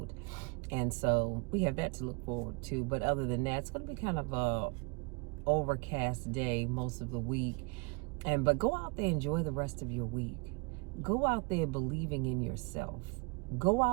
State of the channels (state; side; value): quieter; left; 31.2 dB